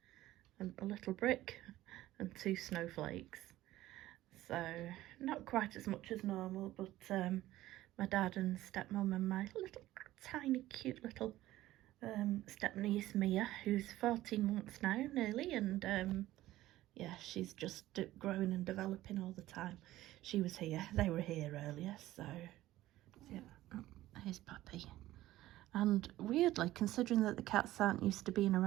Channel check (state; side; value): quieter; left; 15.5 dB